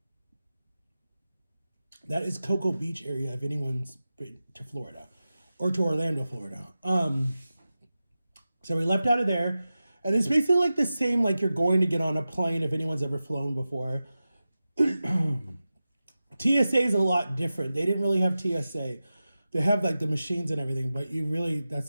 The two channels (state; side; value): inverted; both; correlation -0.94